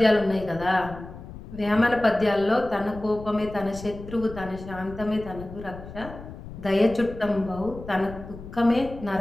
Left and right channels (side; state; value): left; noise; rumble, 14 dB below the sound